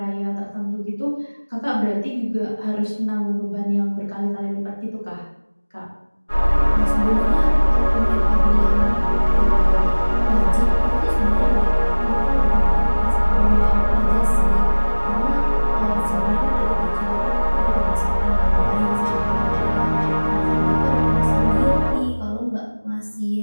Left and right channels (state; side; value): inverted; both; correlation -1.00